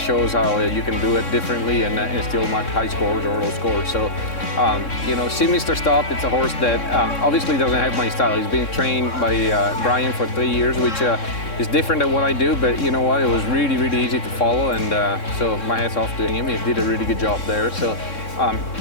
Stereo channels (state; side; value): late; right; 3.6 ms